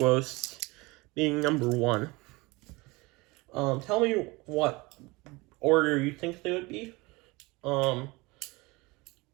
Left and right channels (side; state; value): left; quieter; 23.9 dB